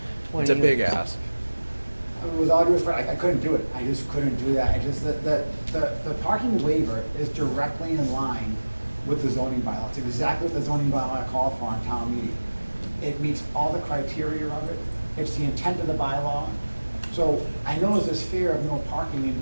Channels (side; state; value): both; inverted; correlation -1.00